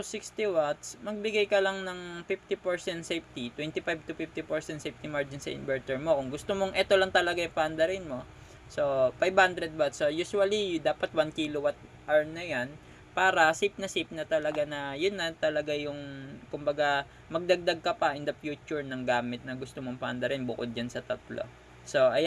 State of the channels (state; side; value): identical; both; correlation 1.00